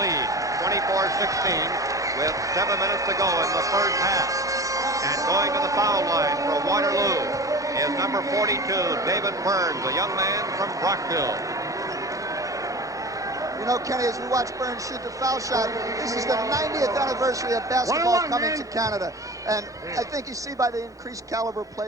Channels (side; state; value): both; normal; correlation 0.34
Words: 24-16, with 7 minutes to go in the first half. And going to the foul line for Waterloo is number 42, David Burns, a young man from Brockville. You know, Kenny, as we watch Burns shoot the foul shot, this is the 90th anniversary of basketball coming to Canada. And I think you see by the increased caliber